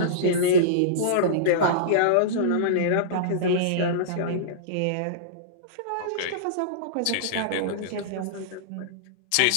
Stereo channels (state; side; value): different; both; correlation -0.04